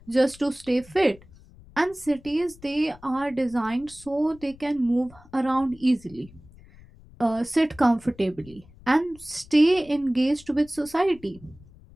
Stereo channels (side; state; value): left; noise; rumble, 23 dB below the sound